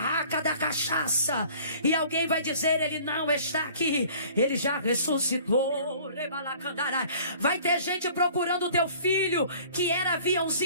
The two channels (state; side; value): inverted; both; correlation -0.50